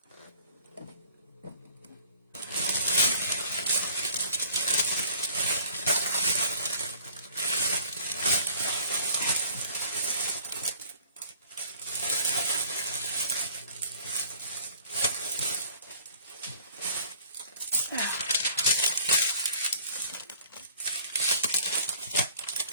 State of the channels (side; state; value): both; inverted; correlation -0.52